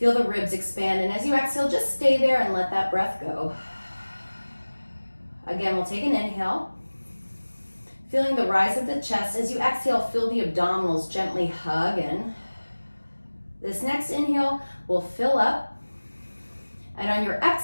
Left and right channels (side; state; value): both; inverted; correlation -1.00